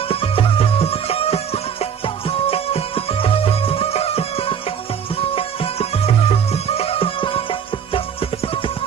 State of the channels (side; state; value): left; quieter; 7.7 dB